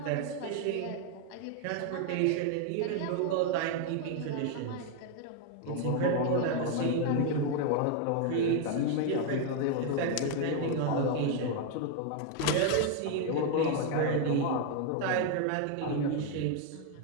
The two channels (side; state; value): both; different; correlation 0.01